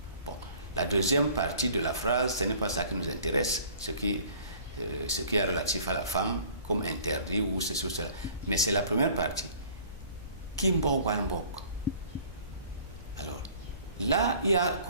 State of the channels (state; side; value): inverted; both; correlation -0.51